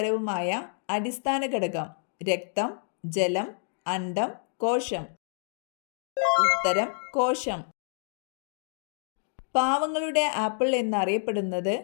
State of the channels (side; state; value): right; silent; digital silence